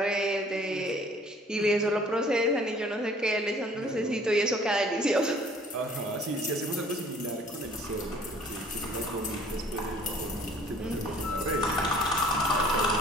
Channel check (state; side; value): normal; both; correlation 0.55